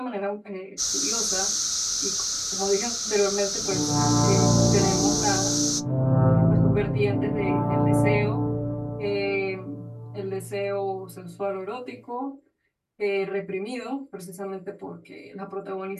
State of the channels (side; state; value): both; identical; correlation 1.00